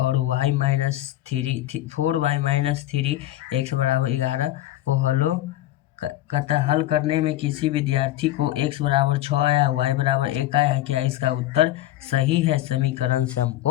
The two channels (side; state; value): right; quieter; 14.5 dB